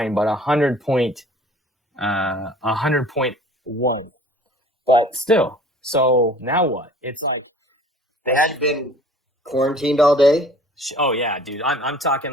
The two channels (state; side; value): normal; both; correlation 0.49